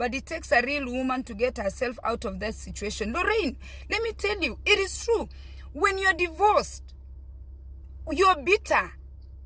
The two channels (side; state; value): both; identical; correlation 1.00